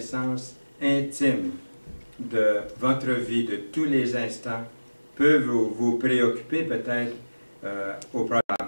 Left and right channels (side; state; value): both; inverted; correlation -1.00